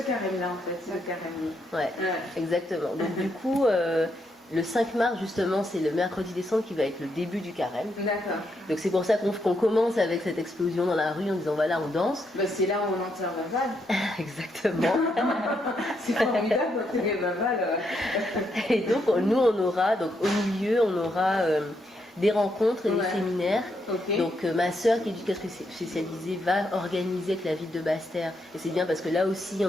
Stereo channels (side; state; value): both; normal; correlation 0.79